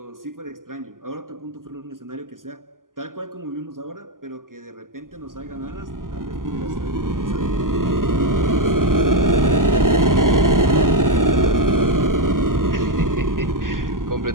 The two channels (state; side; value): late; left; 0.91 ms